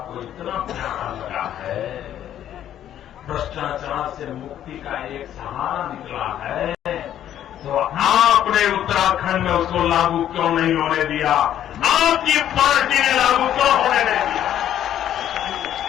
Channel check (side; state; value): right; quieter; 11.0 dB